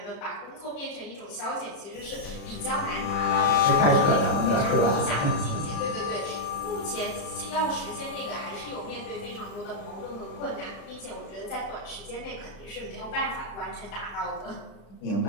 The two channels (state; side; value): late; right; 36 ms